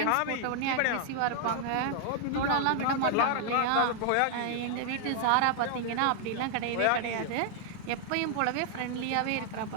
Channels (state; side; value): different; both; correlation 0.00